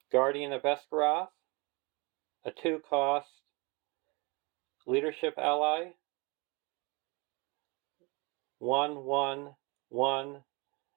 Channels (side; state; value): left; quieter; 28.3 dB